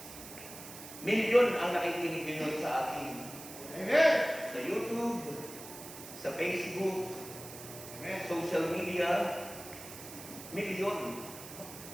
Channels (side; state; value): right; noise; hiss, 13 dB below the sound